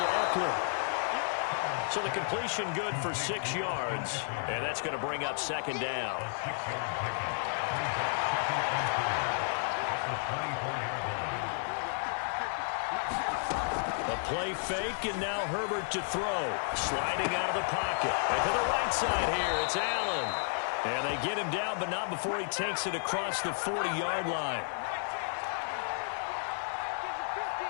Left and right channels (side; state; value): right; silent; 56 dB below the other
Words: Eckler. So the completion good for 6 yards. And that's going to bring up 2nd down. A play fake, and now Herbert to throw. Sliding out of the pocket. And to the right side here, it's Allen. And they get him down, but not before he takes it across the 40-yard line.